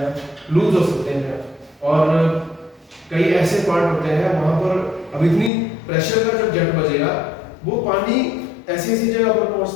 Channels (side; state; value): right; drops out; at 5.5 s